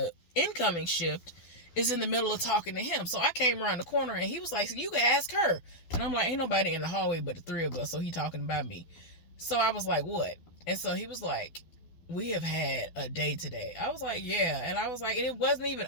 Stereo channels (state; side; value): late; right; 12 ms